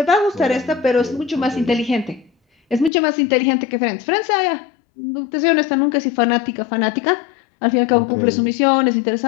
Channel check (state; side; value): drops out; right; at 2.9 s